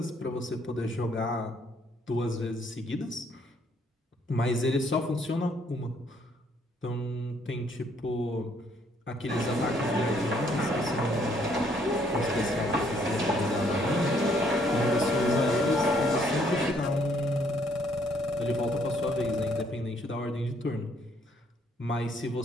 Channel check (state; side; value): normal; both; correlation 0.67